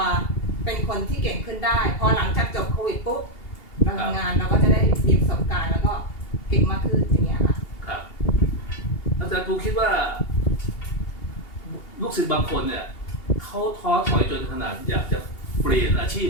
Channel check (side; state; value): right; late; 2.8 ms